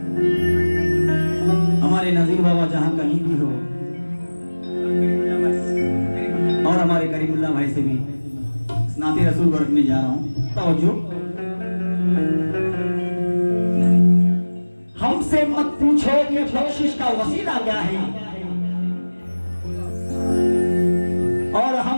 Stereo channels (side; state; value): both; inverted; correlation -1.00